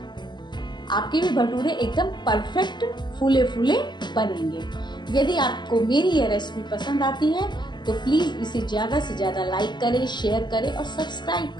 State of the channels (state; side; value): late; right; 0.21 ms